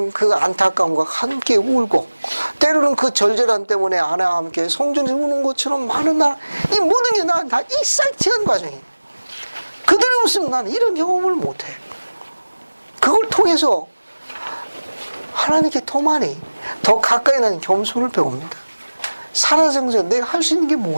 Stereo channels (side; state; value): both; inverted; correlation -1.00